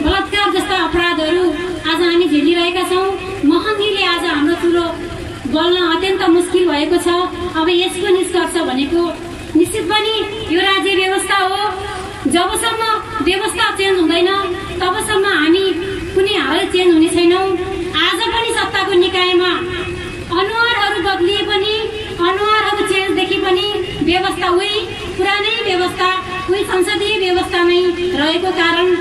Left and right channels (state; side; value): identical; both; correlation 1.00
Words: बलात्कार जस्ता अपराधहरू आज हामी झेलिरहेका छौँ। महँगीले आज हाम्रो चुलो बल्न अत्यन्त मुस्किल भएको छ। अब यसको निष्कर्ष भनेको निश्चित पनि यो राज्य व्यवस्था हो। जबसम्म व्यवस्था चेन्ज हुँदैन तबसम्म हामी कुनै हालै चेन्ज हुने छैनौं। आज पनि सत्ताको निकायमा अनुहारहरू बदलिए पनि अनुहारहरू चेन्ज देखि पनि व्यवस्था उही पुरानै व्यवस्था उही संसदीय व्यवस्था नै रहेको कारण